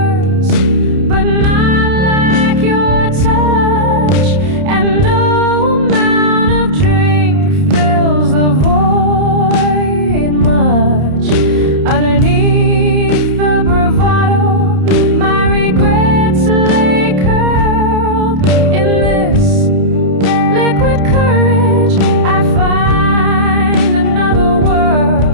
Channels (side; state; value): left; late; 30 ms